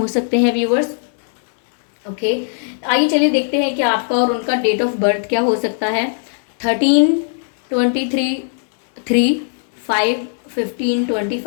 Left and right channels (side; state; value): right; silent; digital silence